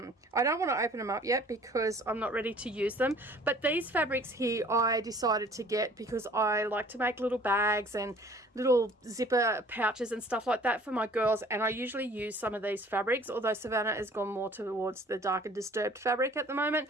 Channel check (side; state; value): both; normal; correlation 0.52